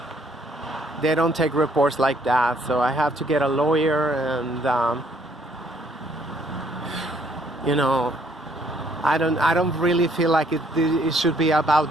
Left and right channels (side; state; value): both; normal; correlation 0.65